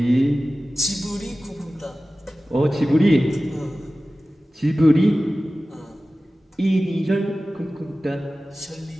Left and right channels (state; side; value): normal; both; correlation 0.96